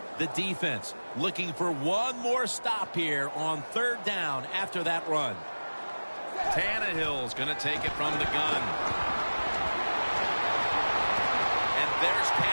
The defense looking for one more stop here on third down after that run. Tannehill's going to take it from the gun. There's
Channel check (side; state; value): both; inverted; correlation -1.00